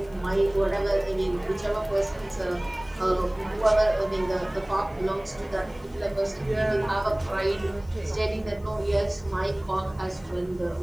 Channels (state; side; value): noise; left; hiss, 30 dB below the sound